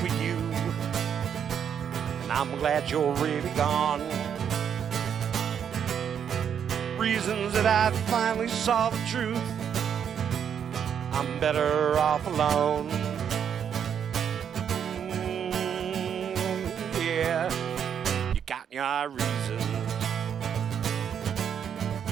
you, and I'm glad you're really gone. Reasons that I finally saw the truth. I'm better off alone. Yeah, you got your reasons.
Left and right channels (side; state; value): left; quieter; 8.2 dB